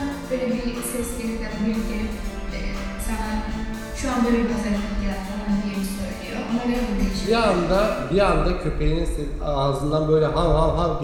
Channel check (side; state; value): both; identical; correlation 1.00